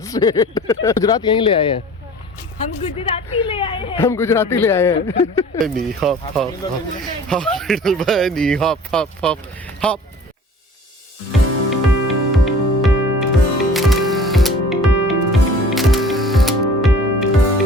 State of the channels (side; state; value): both; normal; correlation 0.46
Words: स्टेट। गुजरात यहीं ले आए हैं हम गुजराती ले आए हैं। हम गुजराती ले आए हैं। नी hop hop hop little bunny hop hop hop hop.